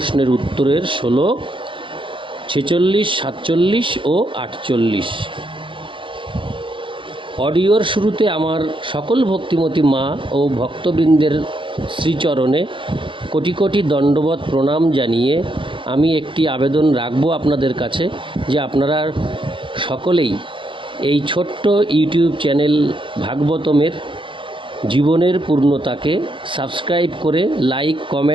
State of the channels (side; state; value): left; late; 0.25 ms